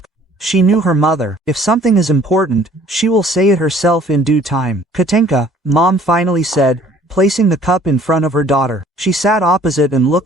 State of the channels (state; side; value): normal; both; correlation 0.55